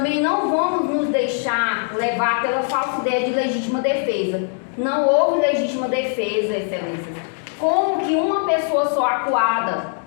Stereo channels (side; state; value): right; silent; 61 dB below the other